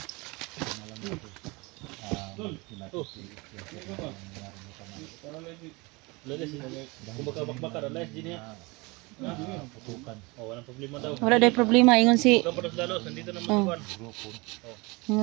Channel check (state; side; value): quieter; left; 25.6 dB